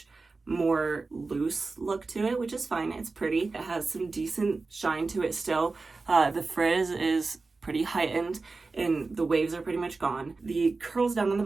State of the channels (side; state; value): left; quieter; 3.9 dB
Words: more loose look to it, which is fine. It's pretty. It has some decent shine to it still. The frizz is pretty heightened and the waves are pretty much gone. The curls down on the